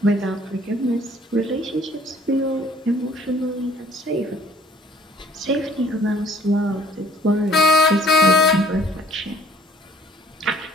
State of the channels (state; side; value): normal; both; correlation 0.57